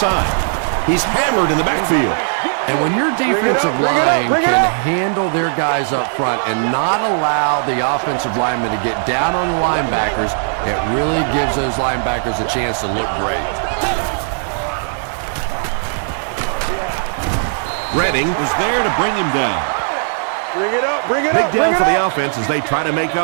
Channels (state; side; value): silent; left; 68 dB below the other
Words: He's hammered in the backfield. And when your defensive line can handle their guys up front and not allow the offensive linemen to get down on the linebackers, it really gives those linebackers a chance to look great. Redding was there to bring him down. Bring it up, bring it Big up. down for the offense as they try to make